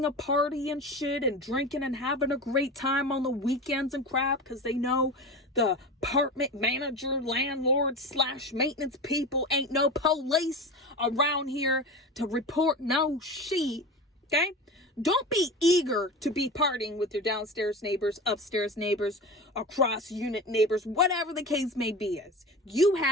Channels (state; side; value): normal; both; correlation 0.29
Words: a party and shit and drinking and having a great time on the weekends and crap because they know the apartment manager, landlord / maintenance people ain't no police around here to report no shit. Okay? Don't be eager to be partying with your downstairs neighbors, upstairs neighbors, across unit neighbors, whatever the case may be is. You